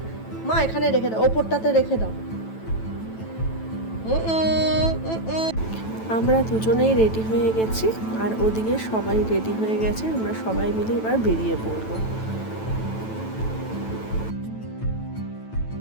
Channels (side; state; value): right; late; 9.1 ms